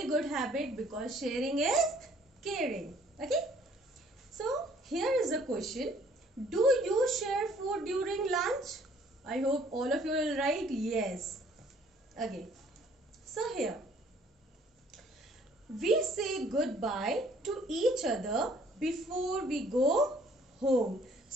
good habit, because sharing is caring. Okay, so here is a question: do you share food during lunch? I hope all of you will write yes. Okay, so here we say goodbye to each other before we go home.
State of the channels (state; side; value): normal; both; correlation 0.59